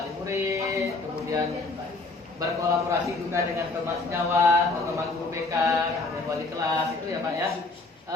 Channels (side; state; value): right; quieter; 3.4 dB